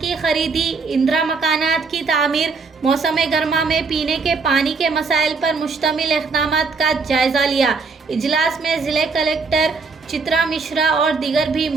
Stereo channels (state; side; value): quieter; left; 4.5 dB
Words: खरीदी, इंदिरा मकानात की तामीर, मौसम गर्मा में पीने के पानी के मसाइल पर मुश्तमिल इक़दामात का जायजा लिया। इजलास में जिले कलेक्टर चित्रा मिश्रा और दीगर भी